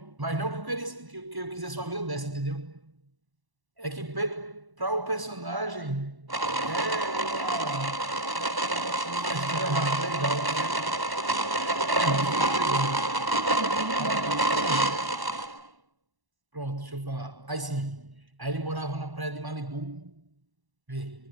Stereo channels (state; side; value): late; left; 1.1 ms